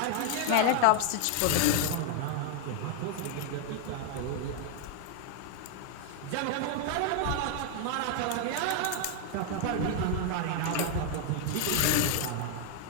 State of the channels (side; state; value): both; different; correlation 0.01